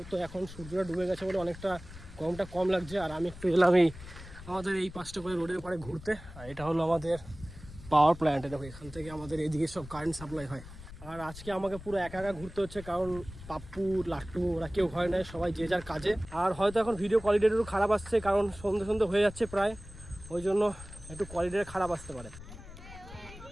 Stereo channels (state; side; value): noise; left; rumble, 16 dB below the sound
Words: তো এখন সূর্যটা ডুবে গেছে বলে অনেকটা গরমটা কম লাগছে। আর আমি একটু এলাম এই আমাদের এই পাশটা করে রোডের পাড়ে ঘুরতে। আর এটা হলো আমাদের পাওয়ার প্ল্যান্ট। দেখো এখান থেকে আমাদের এইদিকে সব কারেন্ট সাপ্লাই হয়। আর আজকে আমাকে পুরো একা একা ঘুরতে হচ্ছে, কারণ পাপ্পু লাট্টু ওরা কেউ ঘরে নেয়, সবাই যে যার কাজে। আর হয়তো এখন ভিডিও কোয়ালিটিটা একটু খারাপ আসছে, কারণ সন্ধ্যে হয়ে যাচ্ছে প্রায়, ওই জন্য একটু কোয়ালিটিটা খারাপ আসতে পারে।